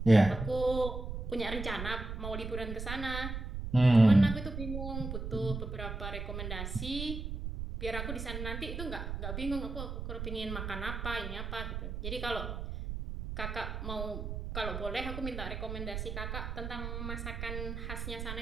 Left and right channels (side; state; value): right; noise; rumble, 5 dB below the sound